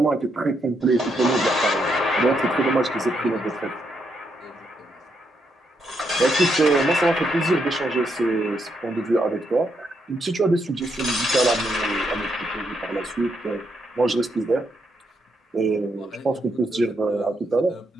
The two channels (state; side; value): normal; both; correlation 0.79